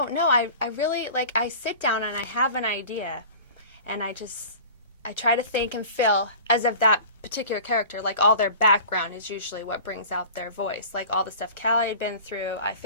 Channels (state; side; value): inverted; both; correlation -0.40